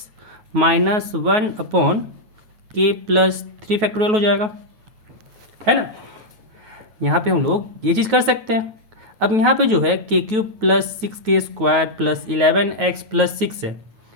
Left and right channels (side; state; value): left; late; 9.3 ms